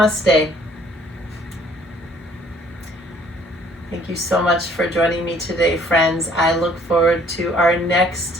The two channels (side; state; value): both; normal; correlation 0.59